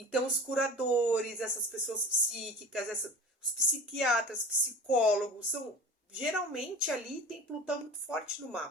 os curadores, essas pessoas psíquicas, os psiquiatras, psicólogos, geralmente ali tem Plutão muito forte no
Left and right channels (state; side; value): normal; both; correlation 0.37